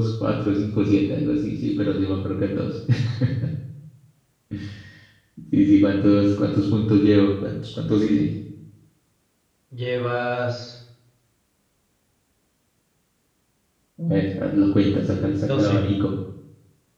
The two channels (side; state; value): both; identical; correlation 1.00